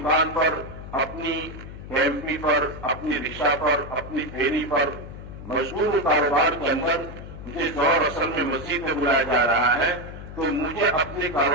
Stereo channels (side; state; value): left; noise; hum, 12 dB below the sound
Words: پر، اپنی ایم پی پر، اپنی رکشا پر، اپنی پھیری پر مشغول کاروبار کے اندر مجھے دور اصل میں مسجد میں بلایا جا رہا ہے تو مجھے اپنے